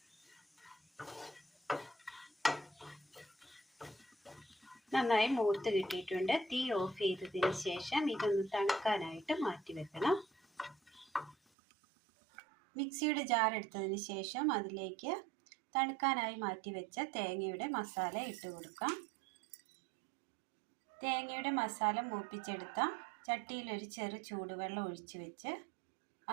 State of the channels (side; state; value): left; drops out; at 11.4 s